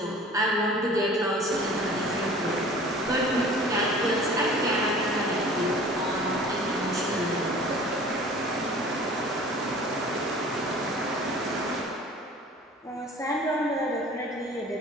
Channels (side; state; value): both; normal; correlation 0.46